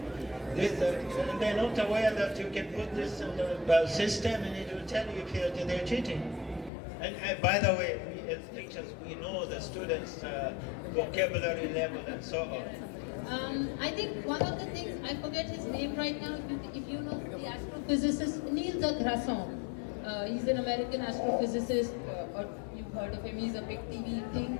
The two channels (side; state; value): right; drops out; at 6.7 s